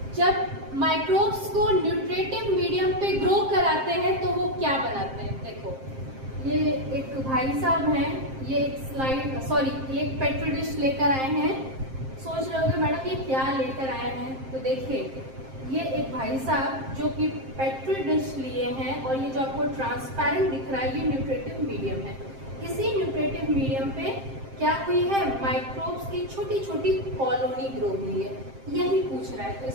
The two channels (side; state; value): left; late; 7.6 ms